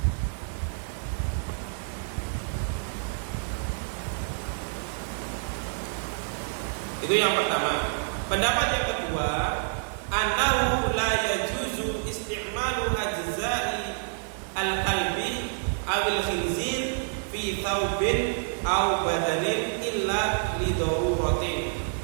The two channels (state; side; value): silent; left; digital silence